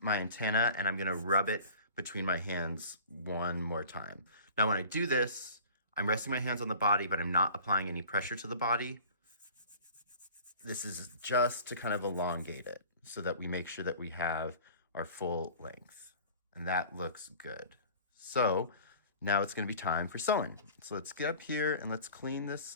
antenna and I'm gonna rub it between my hands one more time. Now when I do this, I'm resting my hands on the body, but I'm not applying any pressure to the body. This is just to kind of elongate it so that we make sure that we have our full length. And that looks good. So now it's gonna be time for sewing. So let's get up here and let's clean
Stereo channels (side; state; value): both; inverted; correlation -0.44